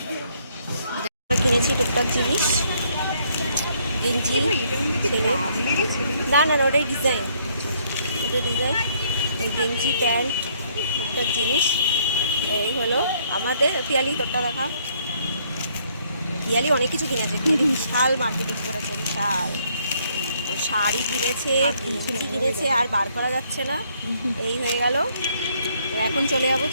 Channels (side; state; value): both; inverted; correlation -0.67